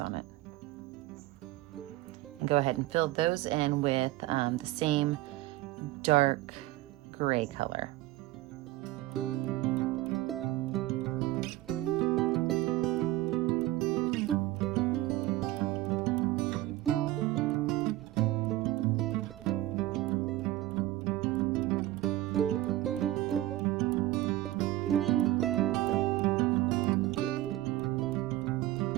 it. And go ahead and fill those in with the same dark gray color.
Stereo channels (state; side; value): quieter; left; 16.3 dB